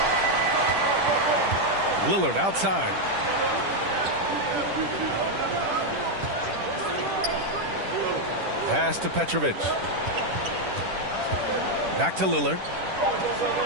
Lillard outside. Pass to Petrovic. Back to Lillard.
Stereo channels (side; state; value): left; late; 10 ms